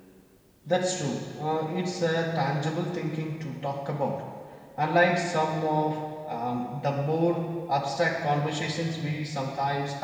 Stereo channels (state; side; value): identical; both; correlation 1.00